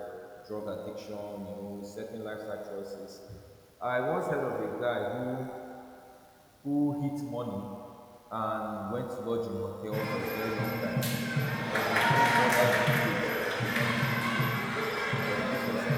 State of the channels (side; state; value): both; identical; correlation 1.00